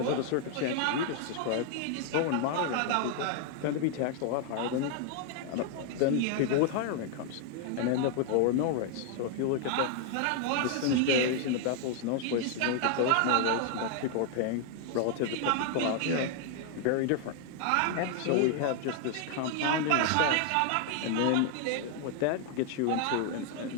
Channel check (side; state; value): both; different; correlation 0.00